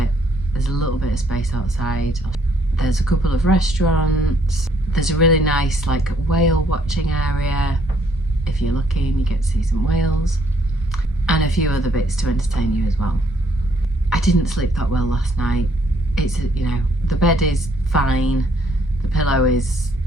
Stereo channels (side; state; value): both; normal; correlation 0.67